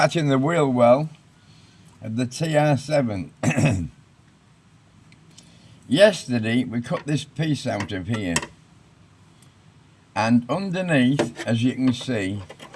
in the wheel well of the TR7. Yesterday we cut this piece out of here, and underneath, as you can see,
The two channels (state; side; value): identical; both; correlation 1.00